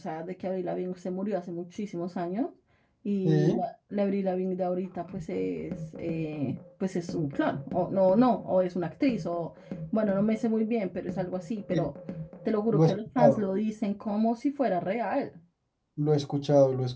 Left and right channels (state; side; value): identical; both; correlation 1.00